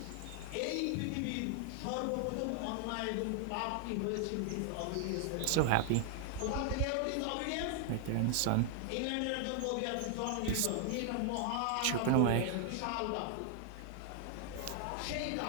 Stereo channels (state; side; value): different; both; correlation 0.00